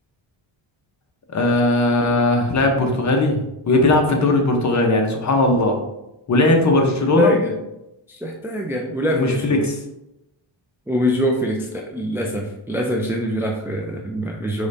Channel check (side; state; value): both; normal; correlation 0.20